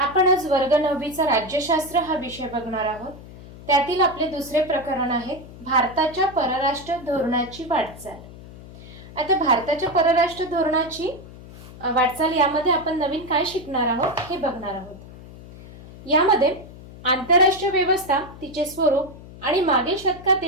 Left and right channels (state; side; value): noise; left; hum, 17 dB below the sound